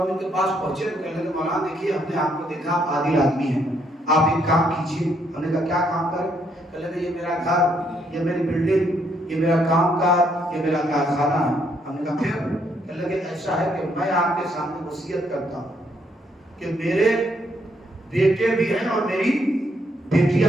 ہم ان کے پاس پہنچے تو کہنے لگے مولانا دیکھیے ہم نے آپ کو دیکھا آپ عادل آدمی ہیں، آپ ایک کام کیجیے۔ ہم نے کہا کیا کام کریں؟ کہنے لگے یہ میرا گھر، یہ میری بلڈنگ، یہ میرا کام کار، یہ میرا کارخانہ ہے۔ ہم نے کہا پھر؟ کہنے لگے ایسا ہے کہ میں آپ کے سامنے وصیت کرتا ہوں کہ میرے بیٹے بھی ہیں اور میری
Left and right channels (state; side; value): normal; both; correlation 0.72